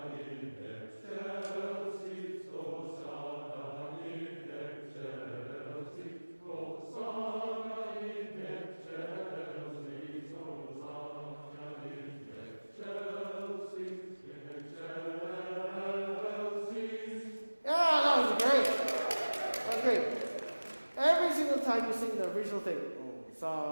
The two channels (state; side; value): inverted; both; correlation -1.00